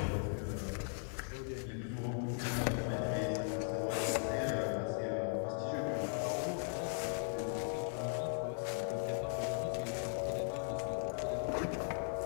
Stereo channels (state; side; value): silent; right; 52 dB below the other